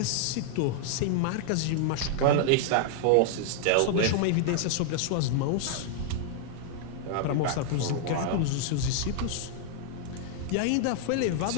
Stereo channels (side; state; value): both; different; correlation 0.00